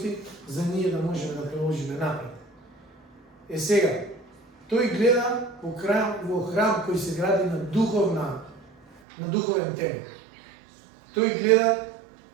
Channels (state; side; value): drops out; left; at 9.0 s